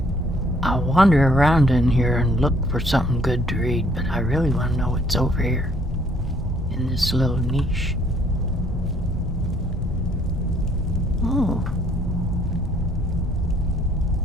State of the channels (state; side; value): normal; both; correlation 0.64